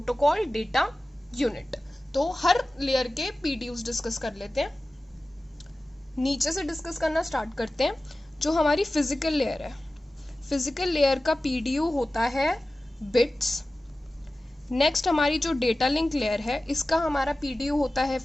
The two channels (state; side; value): normal; both; correlation 0.96